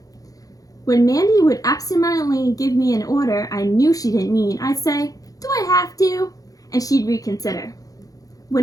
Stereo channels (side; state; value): right; late; 0.17 ms